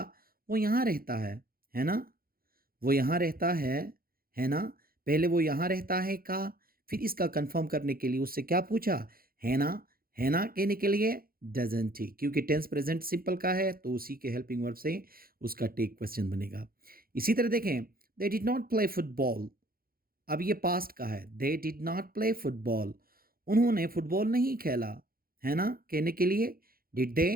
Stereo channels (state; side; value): late; left; 0.43 ms